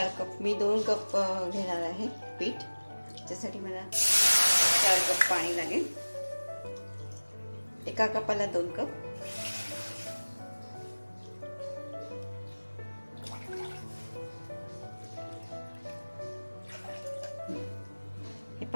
कप, मी 2 कप घेणार आहे पीठ। त्यासाठी मला 4 कप पाणी लागेल। एका कपाला 2 कप। हे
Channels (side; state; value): both; inverted; correlation -1.00